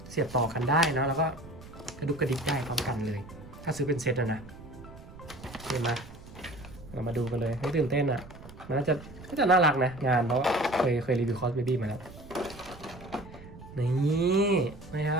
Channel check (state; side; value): noise; right; rumble, 17 dB below the sound